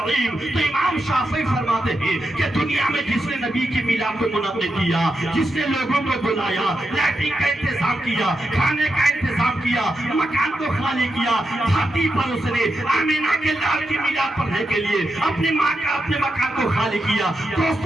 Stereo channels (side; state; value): both; normal; correlation 0.86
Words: تو امام شافعی فرماتے ہیں کہ دنیا میں جس نے نبی کی میلاد کو منعقد کیا، جس نے لوگوں کو بلایا، لائٹنگ کا انتظام کیا، کھانے کا انتظام کیا، مکان کو خالی کیا، دھرتی پر اس نے آمینہ کے لال کی میلاد پڑھنے کے لیے اپنے ماں کا اپنے مکان کو خالی کیا،